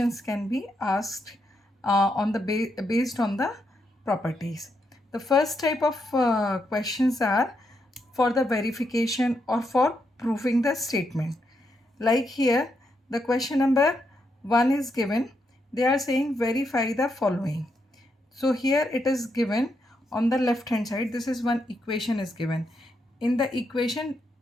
can be asked on the based on the properties. The first type of questions are for the verification or for proving the statement. Like here, the question number 1 is given. They are saying verify the following. So here it is given on the left hand side. This is one equation is given. In the equation,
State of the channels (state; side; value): normal; both; correlation 0.80